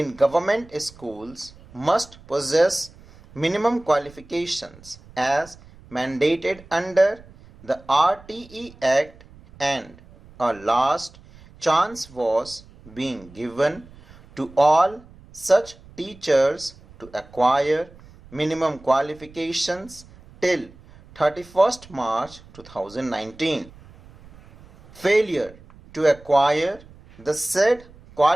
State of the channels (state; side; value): noise; right; rumble, 23 dB below the sound